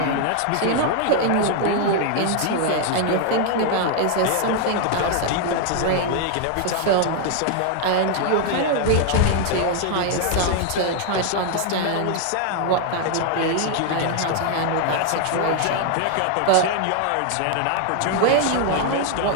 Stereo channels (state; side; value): different; both; correlation 0.00